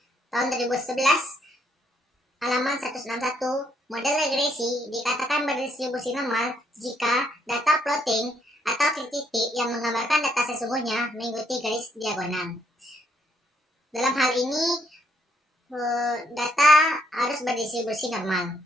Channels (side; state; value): both; normal; correlation 0.72